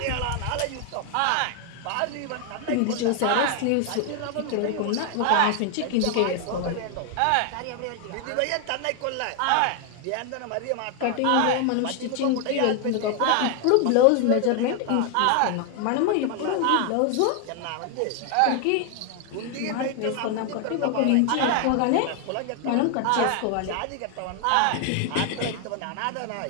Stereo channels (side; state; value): both; different; correlation 0.01